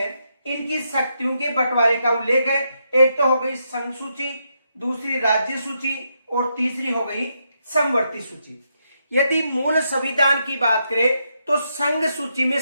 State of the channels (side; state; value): both; inverted; correlation -0.81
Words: इनकी शक्तियों के बंटवारे का उल्लेख है। एक तो हो गई संघ सूची, दूसरी राज्य सूची और तीसरी हो गई समवर्ती सूची। यदि मूल संविधान की बात करें तो संघ सूची में